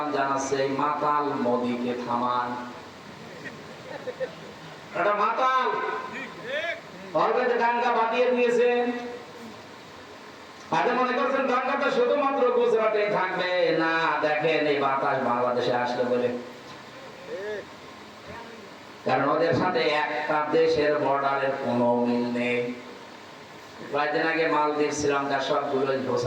জানাচ্ছে মাতাল মোদিকে থামান। এটা মাতাল অলরেডি দাঙ্গা বাঁধিয়ে দিয়েছেন। আজ মনে করছেন দাঙ্গাটা শুধুমাত্র গুজরাটে থাকবে না, দেখেন এই বাতাস বাংলাদেশে আসলে বলে, কারণ ওদের সাথে একটা দেশের বর্ডারের কোনো মিল নেই। কয়েকদিন আগে মালদ্বীপ শ্রীলঙ্কার সবগুলো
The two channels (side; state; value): both; identical; correlation 1.00